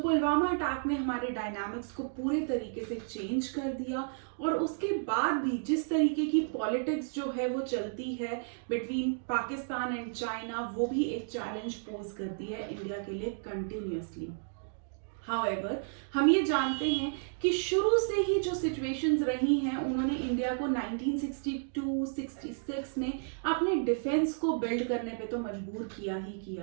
attack ने हमारे डायनामिक्स को पूरे तरीके से चेंज कर दिया और उसके बाद भी जिस तरीके की पॉलिटिक्स जो है वो चलती है बिटवीन पाकिस्तान एंड चाइना, वो भी एक चैलेंज पोज करती है इंडिया के लिए कंटिन्यूअसली। हाउएवर, हम ये जानते हैं कि शुरू से ही जो सिचुएशंस रही हैं उन्होंने इंडिया को 1962-66 में अपने डिफेंस को बिल्ड करने पे तो मजबूर किया ही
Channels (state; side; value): silent; left; digital silence